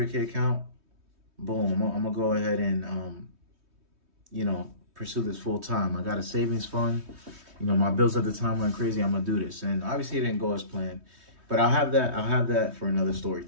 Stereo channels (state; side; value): late; left; 3.2 ms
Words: account. Boom, I'm gonna go ahead and you know, pursue this full time. I got a savings fund. You know, my bills at the time went crazy. I'm gonna do this. And obviously it didn't go as planned. But I'll have that for another story